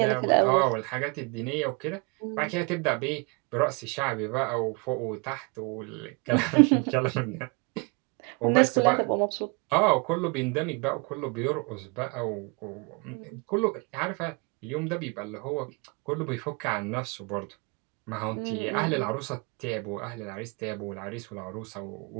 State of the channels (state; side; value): quieter; left; 31.1 dB